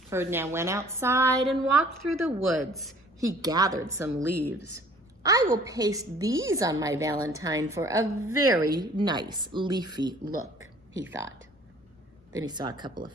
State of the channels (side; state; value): both; normal; correlation 0.53